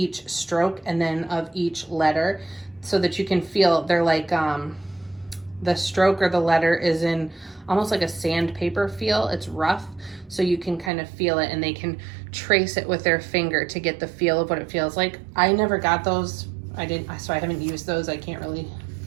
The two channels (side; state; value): left; drops out; at 10.9 s